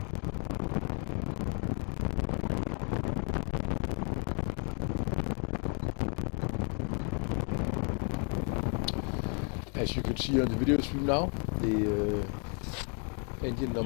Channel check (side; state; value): right; quieter; 39.4 dB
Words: As you can see on the video stream now, the engine